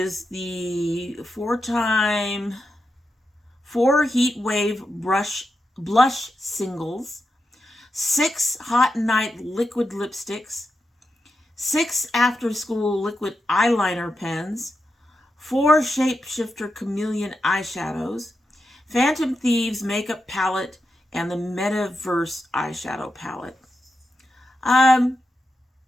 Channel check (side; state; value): both; normal; correlation 0.88